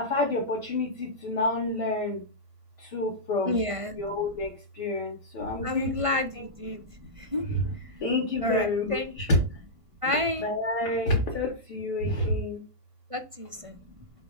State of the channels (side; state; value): left; late; 1.5 ms